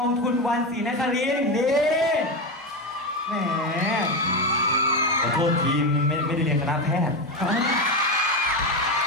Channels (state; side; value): normal; both; correlation 0.15